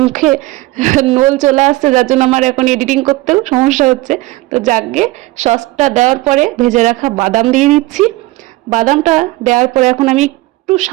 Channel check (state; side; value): quieter; left; 19.8 dB